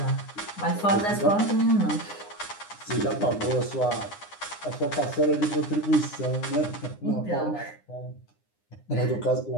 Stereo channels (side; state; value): right; late; 9.8 ms